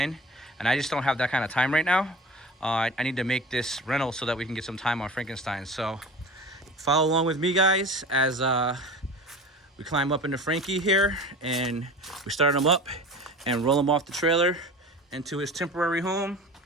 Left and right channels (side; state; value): both; normal; correlation 0.37